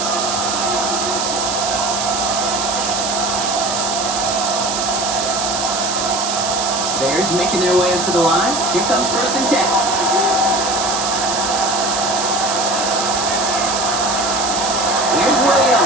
Bears making their way up to the line. Here comes 1st and 10. Here's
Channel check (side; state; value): right; noise; hiss, 2 dB below the sound